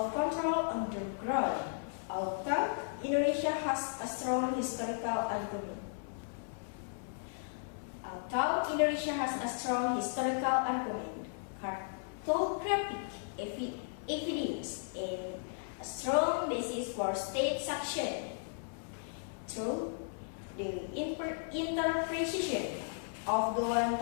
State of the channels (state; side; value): silent; right; 54 dB below the other